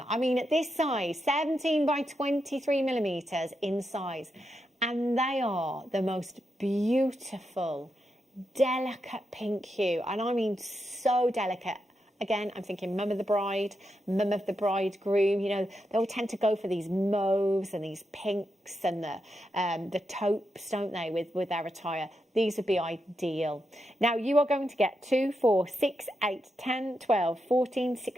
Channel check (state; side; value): normal; both; correlation 0.85